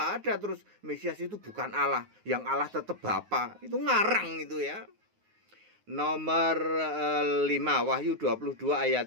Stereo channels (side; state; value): left; late; 9.5 ms